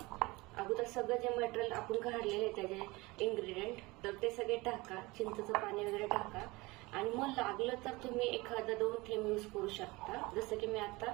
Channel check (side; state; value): left; quieter; 22.6 dB